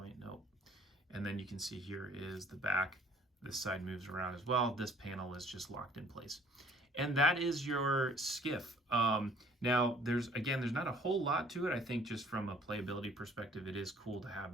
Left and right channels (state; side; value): normal; both; correlation 0.56